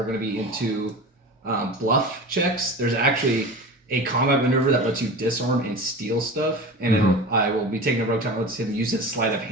going to be into bluff checks. There's actually a combat maneuver that lets you disarm and steal stuff, and I will be taking a rogue talent that lets him use his sleight of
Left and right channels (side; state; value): both; normal; correlation 0.32